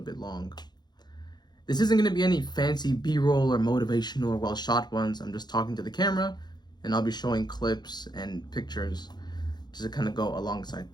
bit long. This isn't going to be any fancy B-roll or motivational or well-shot ones. I'm just talking to the camera, and I'll be showing clips and pictures just to kind of go alongside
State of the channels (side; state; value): right; late; 0.21 ms